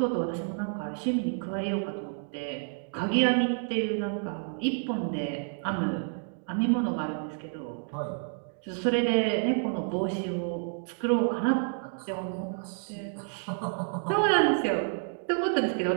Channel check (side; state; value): left; silent; 58 dB below the other